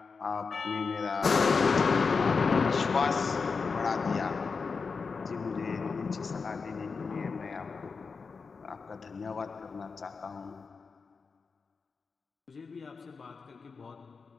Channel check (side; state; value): right; quieter; 4.9 dB